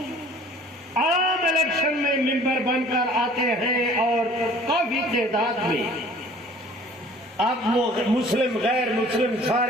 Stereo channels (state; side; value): normal; both; correlation 0.50